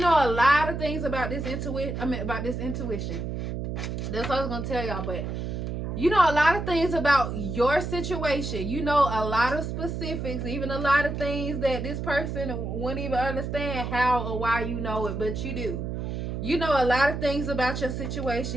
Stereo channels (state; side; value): noise; right; hum, 4 dB below the sound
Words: a lot of things about this intuition. That's what I was going to tell y'all, but you know a lot of things about your situation. You know a lot of specifics, even a lot of things that this person wouldn't even understand how or why you know it, but you do. You know a lot of things about your